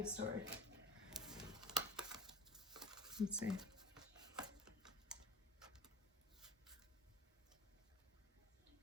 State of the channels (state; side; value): normal; both; correlation 0.37